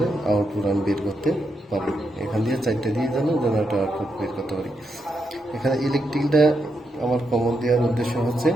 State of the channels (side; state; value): both; normal; correlation 0.83